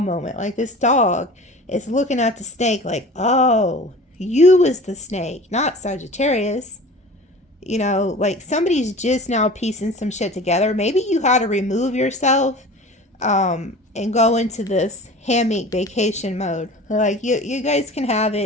Like this dog is looking at the snake like, oh, you was the snake, not Sagittarius. You know, like somebody's just now piecing some shit together. Maybe you had to remove yourself and go into this hammock vacation mode. Like you guys can have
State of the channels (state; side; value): normal; both; correlation 0.39